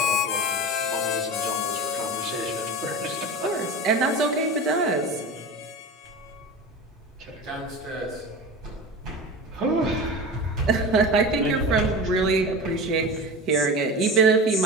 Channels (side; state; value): both; normal; correlation 0.30